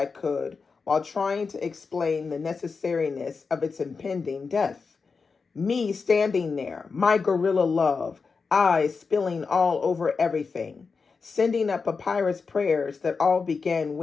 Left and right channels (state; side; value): quieter; right; 4.9 dB